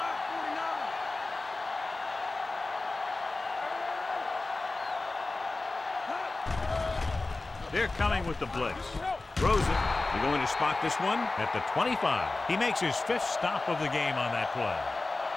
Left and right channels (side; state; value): right; quieter; 3.3 dB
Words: They're coming with the blitz. Throws it. They're going to spot this one at the 25. He makes his 5th stop of the game on that play.